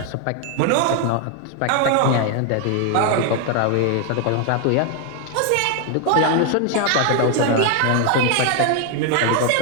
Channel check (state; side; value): different; both; correlation 0.01